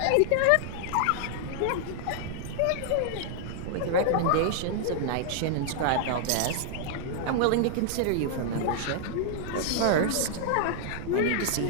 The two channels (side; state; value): both; different; correlation -0.01